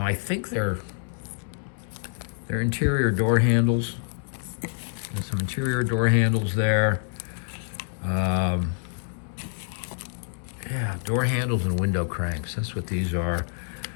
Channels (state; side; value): silent; right; digital silence